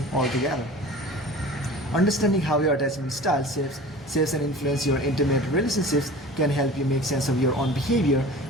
altogether. Understanding how your attachment style shapes and influences your intimate relationships can help you make sense of your own behavior,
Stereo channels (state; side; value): normal; both; correlation 0.40